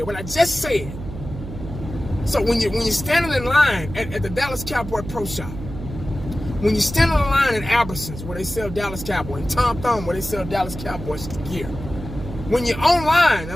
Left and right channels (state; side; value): noise; right; hum, 10 dB below the sound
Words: what I just said, so when you're standing in line at the Dallas Cowboy Pro Shop, when you're standing in line at Albertsons where they sell Dallas Cowboy, and Tom Thumb where they sell Dallas Cowboys gear, when you're online